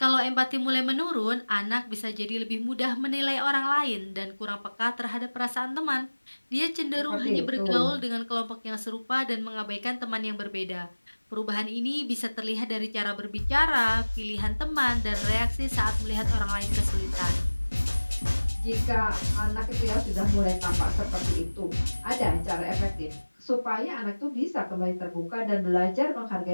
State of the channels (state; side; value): inverted; both; correlation -1.00